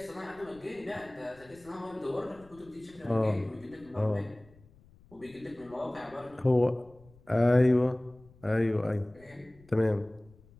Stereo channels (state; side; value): noise; left; rumble, 26 dB below the sound